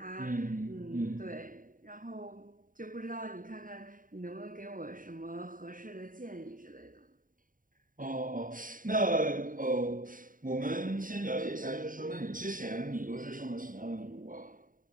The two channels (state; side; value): late; left; 0.39 ms